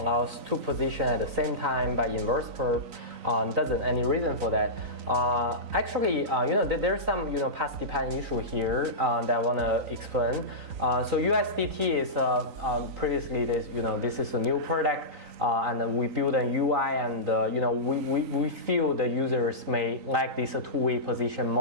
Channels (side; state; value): left; late; 3.9 ms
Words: allows two positions at the same time by inverse perp. Doesn't any reason for that? Actually, there's some path dependent issue here that I want to explain. So USDT is previously this is a new product, and we build a UI, and we feel the users may like this two-way position